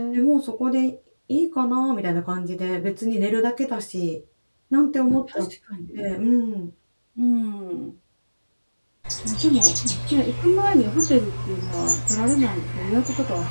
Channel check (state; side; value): inverted; both; correlation -1.00